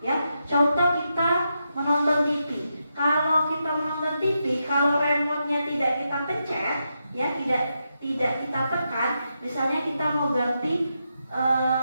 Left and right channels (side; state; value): both; inverted; correlation -0.85